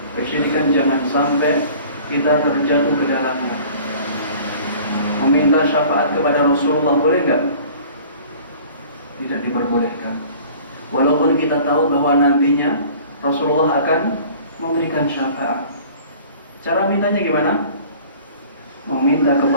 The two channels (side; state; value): both; inverted; correlation -0.47